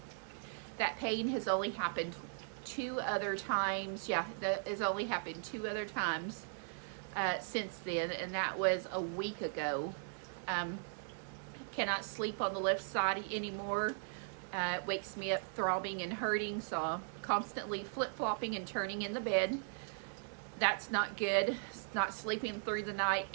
That pain has only happened 2 other times. Yeah, that has only happened 2 other times since then, and that was a week ago. Cannot sleep on the left side anymore. It wakes me up throbbing and hurting, so I'm constantly flip-flopping and turning in the bed. That's not good. It's not sleeping through the night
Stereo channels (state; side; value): silent; left; 52 dB below the other